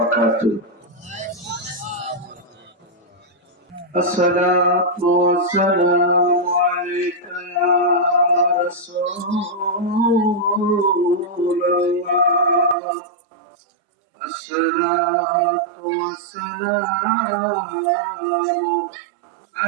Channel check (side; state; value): left; drops out; at 12.8 s